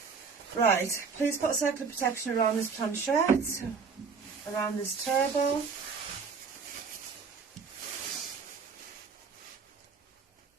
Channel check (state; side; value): quieter; left; 5.3 dB